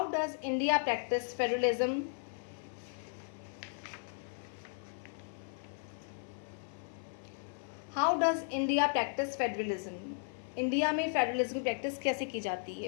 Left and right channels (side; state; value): right; silent; 54 dB below the other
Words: does India practice federalism. How does India practice federalism. India में फेडरलिज्म की प्रैक्टिस कैसे की जाती